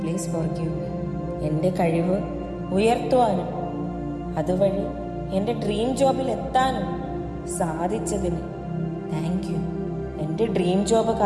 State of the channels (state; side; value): identical; both; correlation 1.00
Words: പ്ലീസ് ഫോർഗീവ് മീ. എൻ്റെ കഴിവ് ഉയർത്തുവാനും അതുവഴി എൻ്റെ ഡ്രീം ജോബിൽ എത്താനും സാധിച്ചതിന് താങ്ക് യു. എൻ്റെ ഡ്രീം ജോബ്